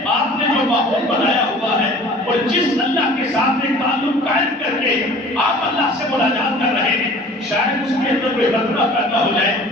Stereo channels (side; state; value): both; normal; correlation 0.46